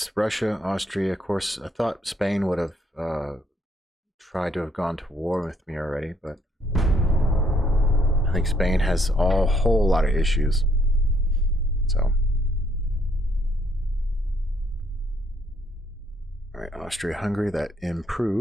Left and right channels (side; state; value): both; normal; correlation 0.69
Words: Russia, Austria. Of course, I thought Spain would have tried to have gone to war with me already, but I think Spain has a whole lot of issues. So, all right, Austria-Hungary, that